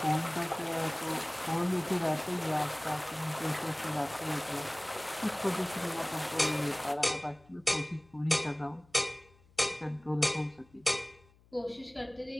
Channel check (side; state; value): left; noise; hum, 29 dB below the sound